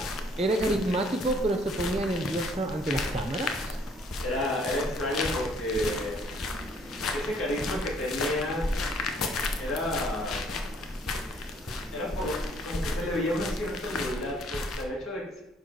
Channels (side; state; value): both; normal; correlation 0.62